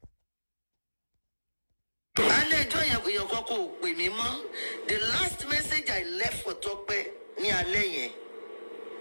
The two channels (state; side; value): inverted; both; correlation -1.00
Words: The last message I left for Tope ní alẹ́ yẹn